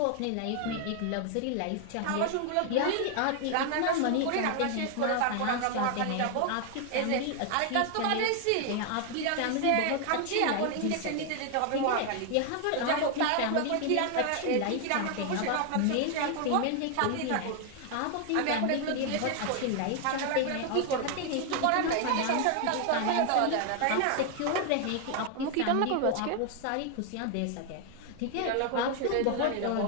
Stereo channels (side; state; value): both; different; correlation 0.00